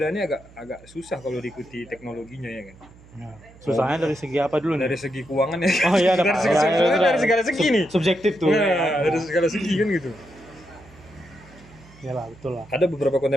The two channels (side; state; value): right; noise; hum, 24 dB below the sound